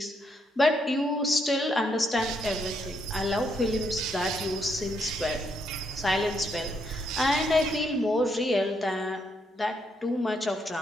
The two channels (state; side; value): normal; both; correlation 0.76